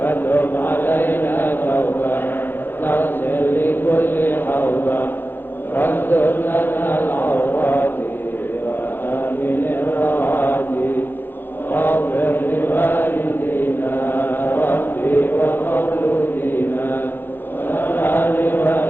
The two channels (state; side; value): late; right; 0.098 ms